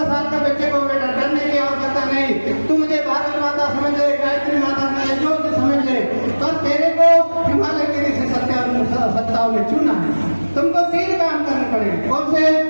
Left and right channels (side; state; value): both; inverted; correlation -1.00